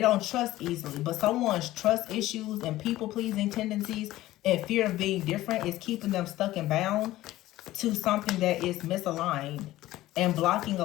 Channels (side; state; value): right; quieter; 15.9 dB